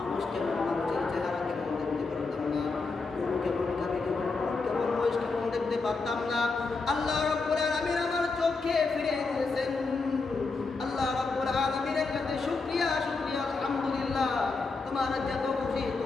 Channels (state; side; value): quieter; right; 4.1 dB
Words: কেমন, মানুষের চেহারা কেমন দেখতে পারতাম না, গরু কেমন, গাভী কেমন, উট কেমন, মহিষ কেমন দেখতে পারতাম না। আল্লাহ রাব্বুল আলামিন আমার চোখে ফিরে দিয়েছেন। আল্লাহ রাব্বুল আলামিনের কাছে শুকরিয়া, শুকরিয়া, আলহামদুলিল্লাহ। তোমার যত খুশি,